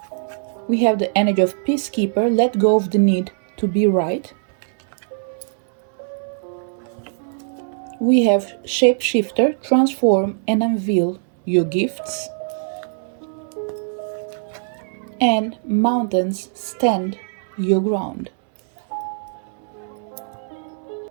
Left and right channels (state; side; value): silent; left; digital silence